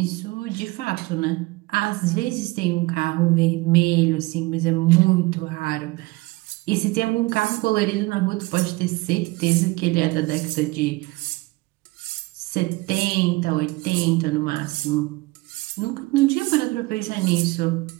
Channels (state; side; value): quieter; left; 22.1 dB